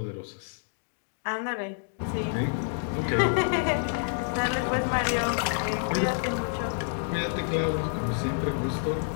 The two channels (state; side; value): silent; right; 58 dB below the other